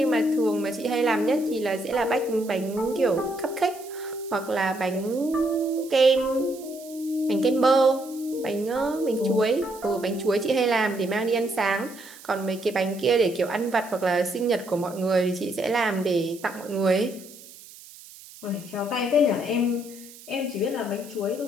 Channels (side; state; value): right; noise; hiss, 19 dB below the sound